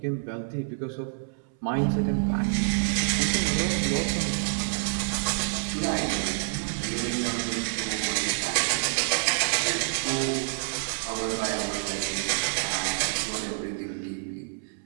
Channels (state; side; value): silent; left; 60 dB below the other